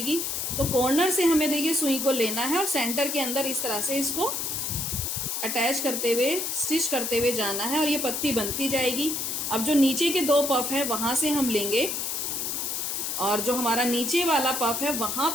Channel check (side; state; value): left; noise; hiss, 2 dB below the sound